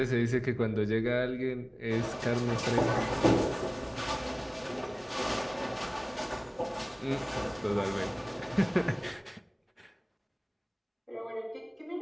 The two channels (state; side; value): identical; both; correlation 1.00